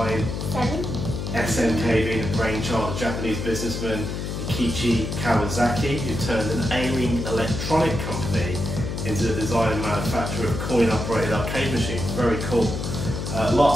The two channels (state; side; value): noise; left; hum, 4 dB below the sound